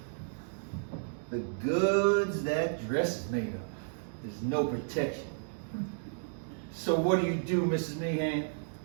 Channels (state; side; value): silent; left; digital silence